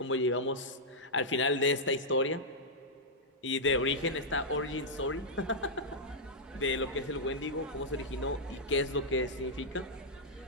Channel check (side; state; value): both; normal; correlation -0.07